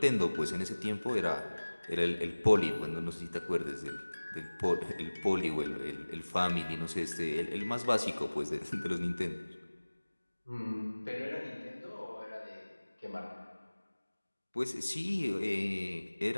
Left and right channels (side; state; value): both; inverted; correlation -1.00